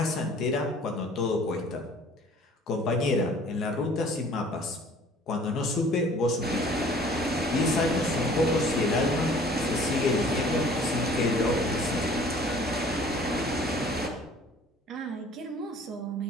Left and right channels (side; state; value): both; normal; correlation 0.51